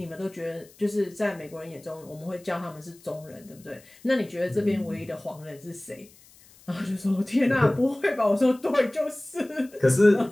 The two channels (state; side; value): noise; left; hiss, 26 dB below the sound